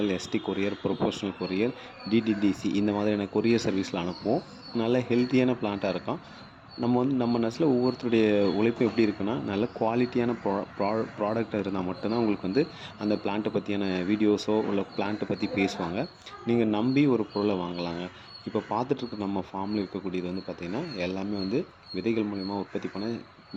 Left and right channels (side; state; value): both; identical; correlation 1.00